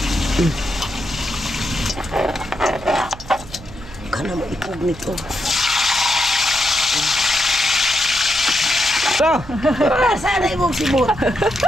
Kana mo ipog nito. Sa! Sana imong sibot.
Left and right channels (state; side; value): noise; right; hum, 18 dB below the sound